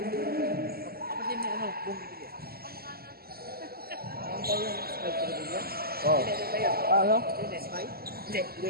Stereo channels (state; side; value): late; left; 0.45 ms